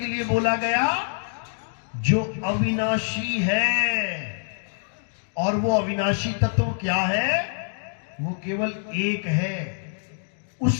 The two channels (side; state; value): right; silent; digital silence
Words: लिए बोला गया? जो अविनाशी है। और वो अविनाशी तत्व क्या है? वो केवल एक है,